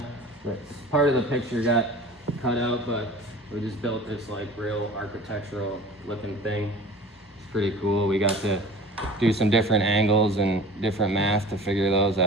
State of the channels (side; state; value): both; normal; correlation 0.41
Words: part of the picture got cut out, but we just built this like real architectural looking thing. It's pretty cool. We got to do some different angles and different math to figure those